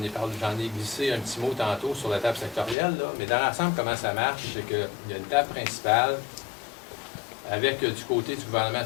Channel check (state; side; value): drops out; right; at 2.8 s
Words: ai glissé un petit mot tantôt sur la table sectorielle, là, mais dans l'ensemble, comment ça marche, c'est qu'il y a une table principale avec du côté du gouvernement